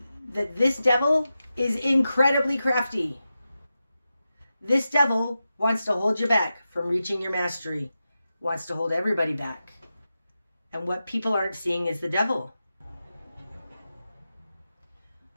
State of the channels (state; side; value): inverted; both; correlation -0.91